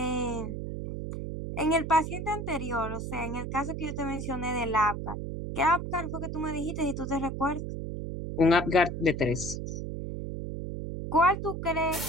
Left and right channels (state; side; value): noise; right; hum, 5 dB below the sound